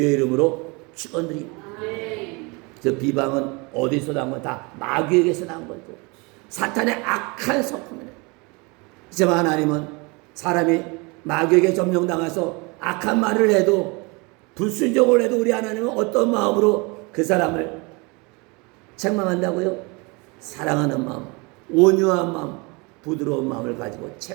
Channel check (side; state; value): left; quieter; 28.2 dB